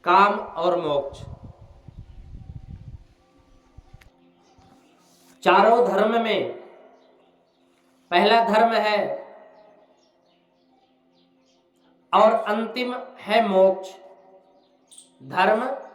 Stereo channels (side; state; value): both; identical; correlation 1.00